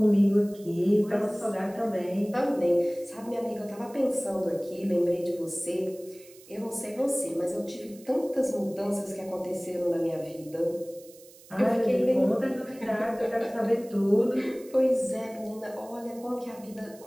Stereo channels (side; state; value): right; noise; hiss, 23 dB below the sound